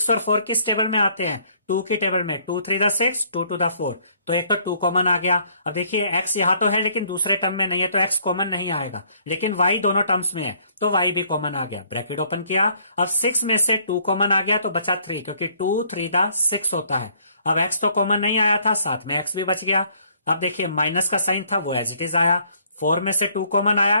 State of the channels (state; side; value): inverted; both; correlation -0.64